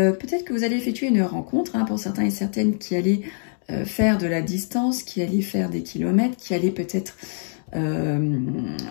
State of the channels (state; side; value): silent; right; 63 dB below the other